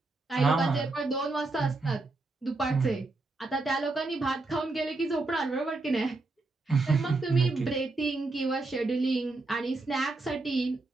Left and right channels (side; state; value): left; quieter; 3.3 dB